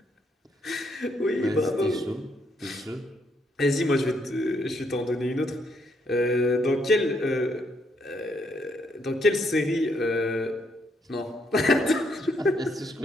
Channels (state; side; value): normal; both; correlation 0.74